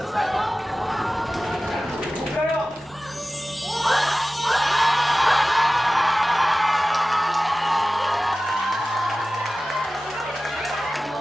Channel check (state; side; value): normal; both; correlation 0.96